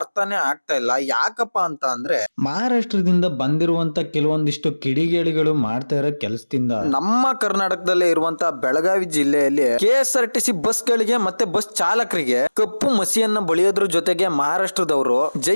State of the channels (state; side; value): inverted; both; correlation -1.00